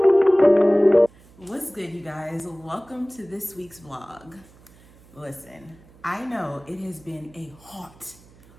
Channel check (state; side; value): noise; right; hum, 26 dB below the sound